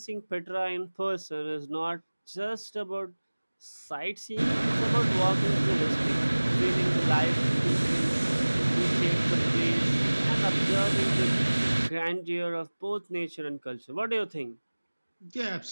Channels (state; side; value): inverted; both; correlation -1.00